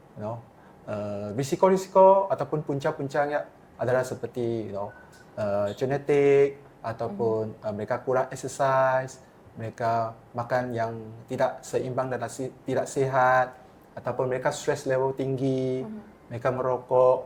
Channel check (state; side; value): identical; both; correlation 1.00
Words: Risiko-risiko ataupun punca-puncanya adalah seperti genetik ataupun mereka kurang exercise, mereka makan yang tidak seimbang dan tidak sihat, ataupun mereka stress level tinggi, mereka